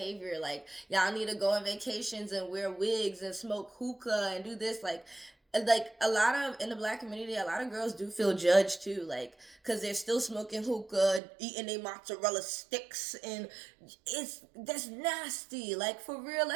Like y'all need to go on vacations and wear wigs and smoke hookah and do this. Like a lot of in the black community, a lot of girls do feel judged too. Like because they're still smoking hookah, eating their mozzarella sticks, and that's nasty. Like for real,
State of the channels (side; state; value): left; drops out; at 11.2 s